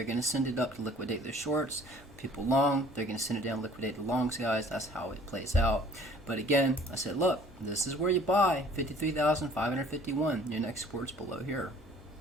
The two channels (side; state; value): both; normal; correlation 0.53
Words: going to send it up to liquidate their shorts. People long, they're going to send it down, liquidate the longs, guys. That's how it plays out. But again, I said, look, this is where you buy 53,551. Your next support's below here.